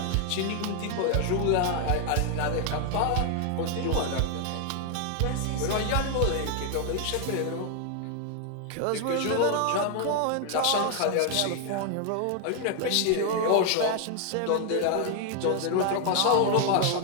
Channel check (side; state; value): both; different; correlation 0.00